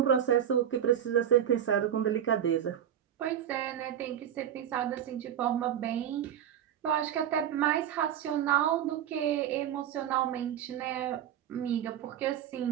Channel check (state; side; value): quieter; left; 9.8 dB